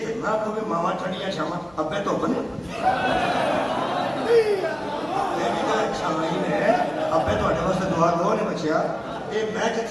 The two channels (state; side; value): noise; left; hum, 28 dB below the sound